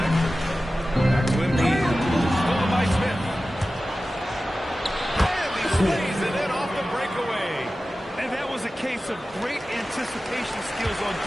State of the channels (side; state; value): both; normal; correlation 0.95